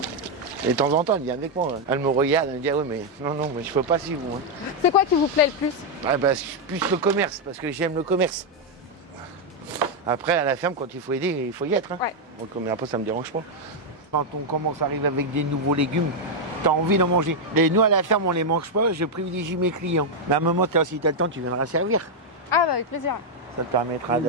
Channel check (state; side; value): normal; both; correlation 0.00